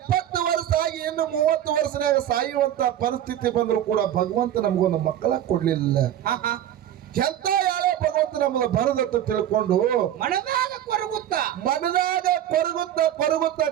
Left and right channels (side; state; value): left; quieter; 11.4 dB